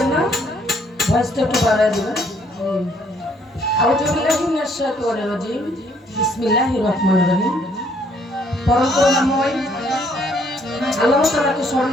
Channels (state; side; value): normal; both; correlation 0.66